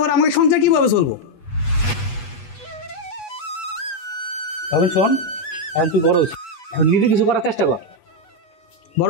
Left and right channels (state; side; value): late; right; 8.2 ms